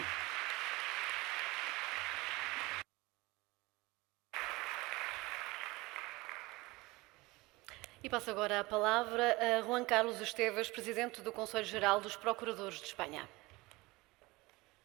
E passo agora a palavra a Juan Carlos Esteves, Presidente do Conselho Geral dos Procuradores de Espanha.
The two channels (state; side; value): quieter; left; 22.0 dB